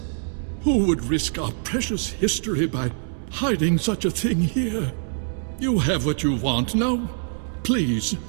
Who would risk our precious history by hiding such a thing here? You have what you want. Now, please,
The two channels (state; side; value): silent; left; digital silence